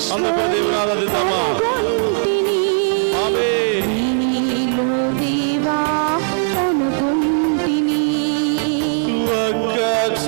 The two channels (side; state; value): left; silent; digital silence